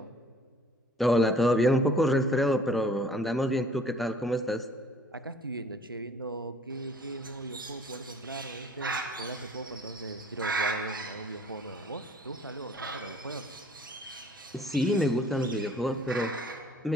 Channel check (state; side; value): normal; both; correlation 0.55